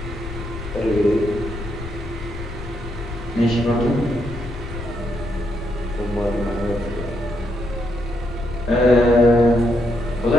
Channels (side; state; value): left; noise; rumble, 10 dB below the sound